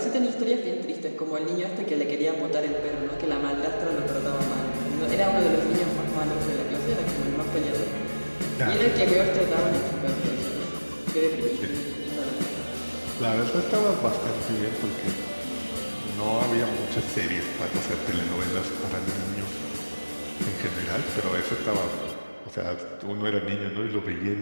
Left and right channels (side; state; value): both; inverted; correlation -1.00